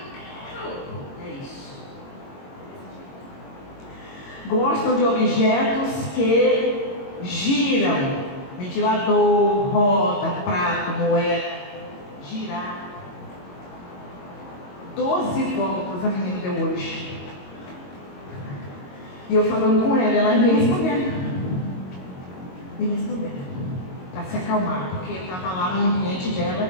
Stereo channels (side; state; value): right; late; 22 ms